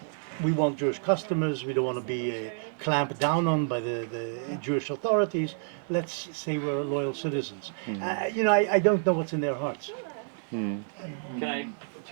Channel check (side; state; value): left; silent; 59 dB below the other